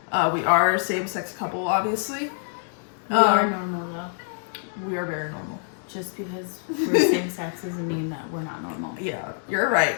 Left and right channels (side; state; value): right; silent; digital silence